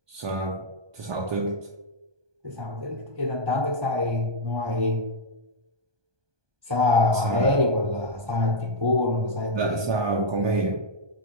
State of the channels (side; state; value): left; late; 1.2 ms